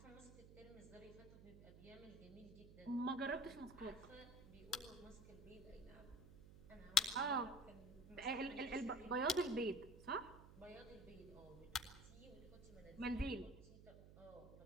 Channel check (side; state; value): right; noise; hum, 17 dB below the sound